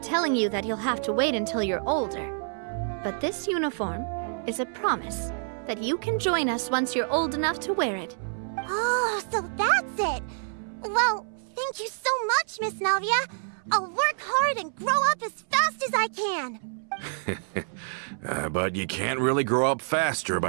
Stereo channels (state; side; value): silent; left; 60 dB below the other